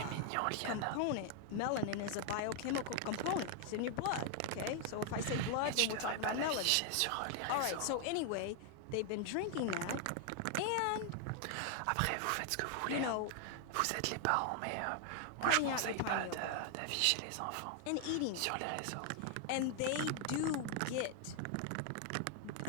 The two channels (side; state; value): both; different; correlation 0.00